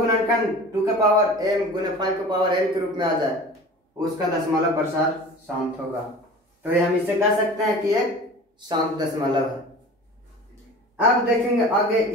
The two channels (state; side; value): normal; both; correlation 0.39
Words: 2 के पावर m गुने 5 के पावर n के रूप में आ जाए उसका दशमलव प्रसार शांत होगा। तो ये हम इसे कह सकते हैं कि एक शांत दशमलव है। अब देखेंगे आगे,